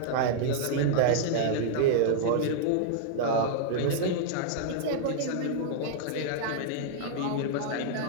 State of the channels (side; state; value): both; different; correlation -0.01